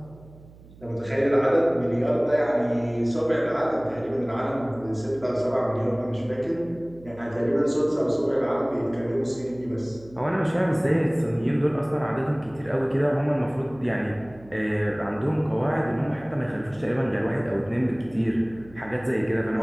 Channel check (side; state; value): right; noise; hum, 22 dB below the sound